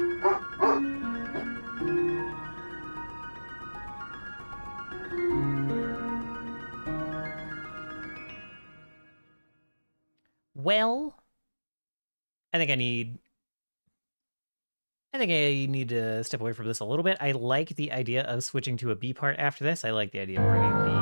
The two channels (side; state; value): both; inverted; correlation -1.00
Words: Well, I think I need to step away from this a little bit. I like the idea of switching to a B part after this. I like the idea of bringing